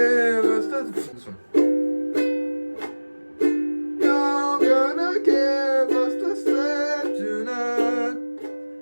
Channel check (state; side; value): inverted; both; correlation -1.00